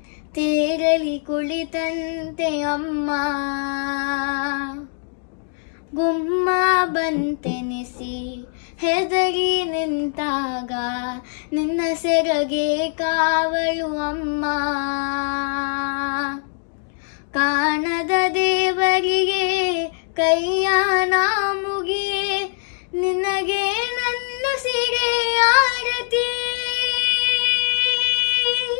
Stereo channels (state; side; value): silent; right; 64 dB below the other